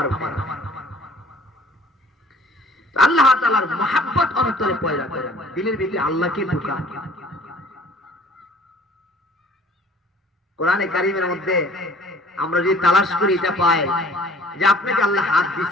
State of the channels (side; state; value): both; normal; correlation 0.53